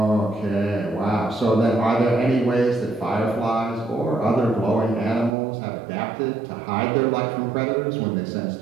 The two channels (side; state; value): left; drops out; at 5.4 s